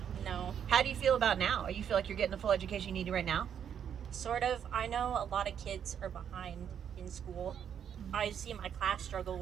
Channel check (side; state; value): left; quieter; 8.5 dB